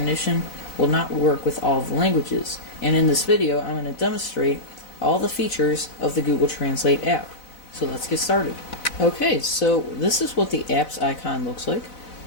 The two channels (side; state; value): right; late; 4.0 ms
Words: will not work with all of the languages. And in this video, I'm going to demonstrate all the features of the Google Translate app. So let's get started. Okay, so this is what the app's icon looks like.